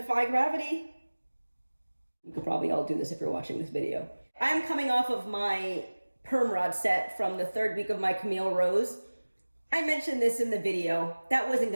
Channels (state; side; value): inverted; both; correlation -1.00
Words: gravity. You could probably all do this if you're watching this video. I'm coming off of my perm rod set from the third week of my Camille Rose. I mentioned this in the video. That wasn't